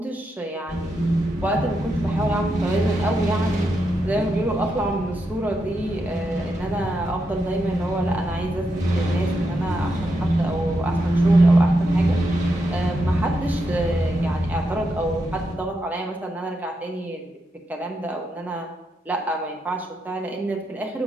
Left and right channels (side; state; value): both; normal; correlation 0.83